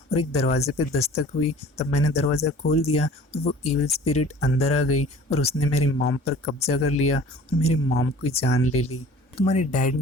और एक दरवाजे पे दस्तक हुई। तब मैंने दरवाज़ा खोल दिया और वो इविल स्पिरिट अंदर आ गई और उसने मेरी मॉम पर कब्जा कर लिया और मेरी मॉम की जान ले ली। तुम्हारे डैड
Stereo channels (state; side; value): normal; both; correlation 0.47